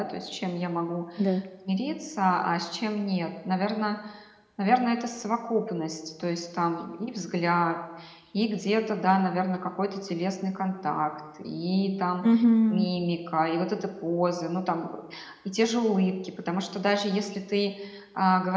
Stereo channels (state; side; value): identical; both; correlation 1.00